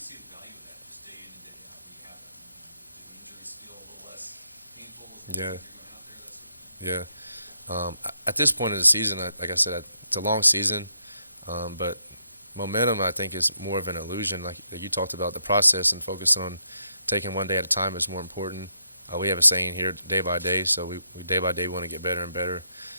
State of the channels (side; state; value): both; inverted; correlation -0.79